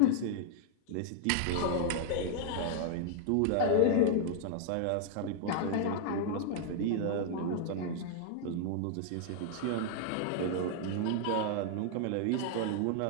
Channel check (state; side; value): different; both; correlation 0.00